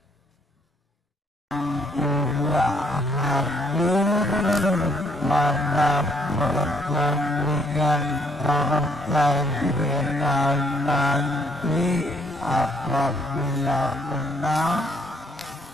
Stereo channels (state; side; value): normal; both; correlation 0.67